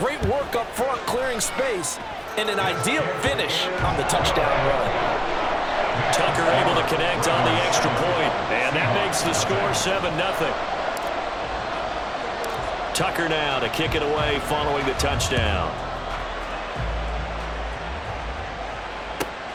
work up front, clearing space, and an ideal finish on the touchdown run. Tucker able to connect on the extra point, and that makes the score 7-0. Tucker now to kick it away following the touchdown.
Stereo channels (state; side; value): identical; both; correlation 1.00